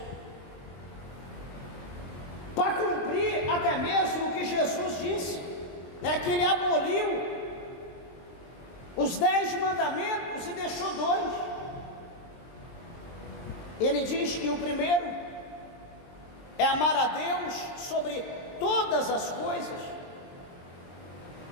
Para cumprir até mesmo o que Jesus disse, que ele aboliu os 10 mandamentos e deixou 2. Ele diz que o primeiro é amar a Deus sobre todas as coisas,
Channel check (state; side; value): late; right; 23 ms